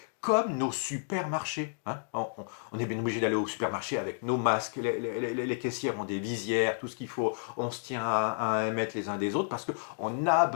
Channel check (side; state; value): right; silent; digital silence